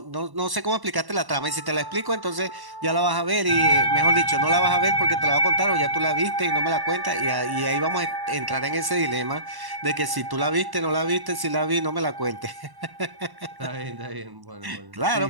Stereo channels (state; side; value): late; left; 1.1 ms